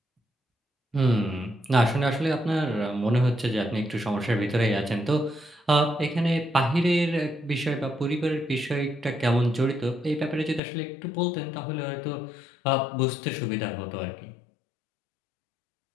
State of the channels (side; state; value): right; drops out; at 10.6 s